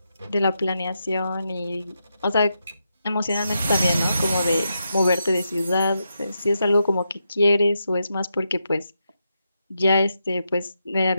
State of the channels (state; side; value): inverted; both; correlation -0.85